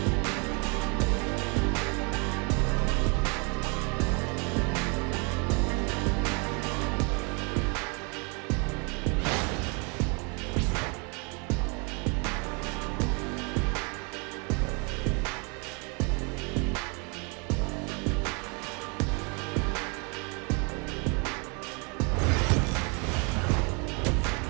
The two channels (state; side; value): quieter; left; 33.5 dB